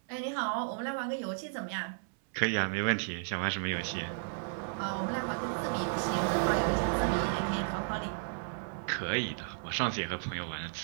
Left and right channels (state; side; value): silent; left; 55 dB below the other